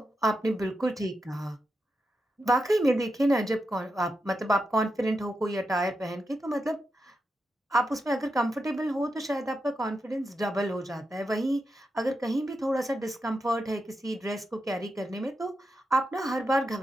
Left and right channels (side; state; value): both; normal; correlation 0.87